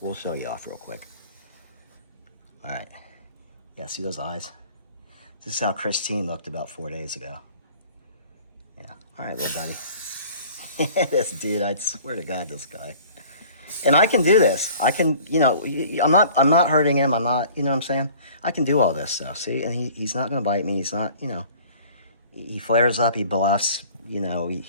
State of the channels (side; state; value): both; inverted; correlation -0.49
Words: we'll show you off real quick. All right. Yeah, see those eyes? This is how Christine looked about 4 days ago. Yeah. All right, little buddy. This dude, I swear to God, this guy. And I can do this. I can, you know, I'm not hurting him. I'm not, you know what I'm saying? I can do all this stuff, see? And he's not going to bite me. He's not, you know. He flares up. He bluffs. You know,